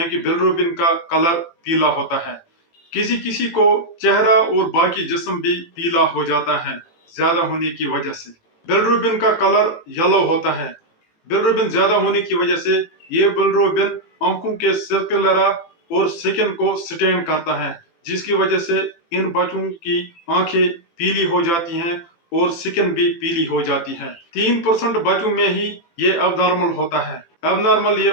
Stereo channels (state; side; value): late; right; 18 ms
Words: बिलरुबिन का कलर पीला होता है। किसी किसी को चेहरा और बाकी जिस्म भी पीला हो जाता है ज्यादा होने की वजह से। बिलरुबिन का कलर येलो होता है। बिलरुबिन ज्यादा होने की वजह से ये बिलरुबिन आंखों के सर्कुलरा और स्किन को स्टेन करता है, जिसकी वजह से इन बच्चों की आंखें पीली हो जाती हैं और स्किन भी पीली हो जाती है। 3% बच्चों में ही ये अबनॉर्मल होता है। अबनॉर्मल ये